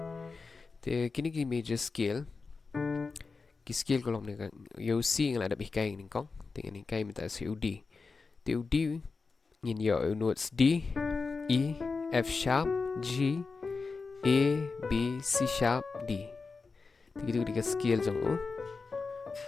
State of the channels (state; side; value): quieter; right; 4.4 dB